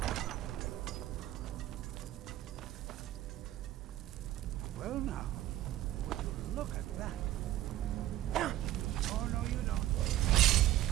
Well now, would you look at that? Oh, no, you don't.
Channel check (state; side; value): quieter; left; 13.9 dB